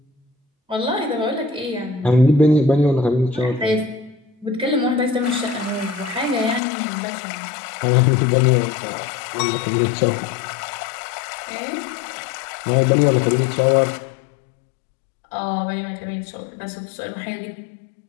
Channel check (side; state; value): right; drops out; at 6.6 s